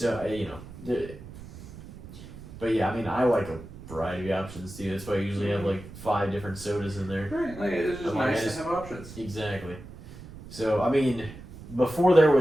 you know, but yeah, I mean, I like a variety of options too. That's why I usually have like 5 different sodas in there. Right. Like it's just I'm like, nice I just- to have options. Exactly. So I mean, before there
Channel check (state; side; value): noise; right; rumble, 15 dB below the sound